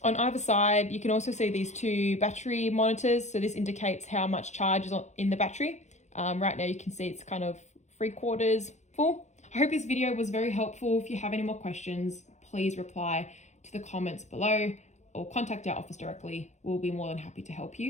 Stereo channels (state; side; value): late; right; 0.34 ms